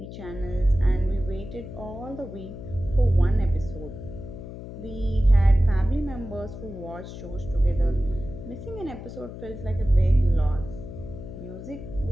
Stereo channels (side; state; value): left; noise; hum, 11 dB below the sound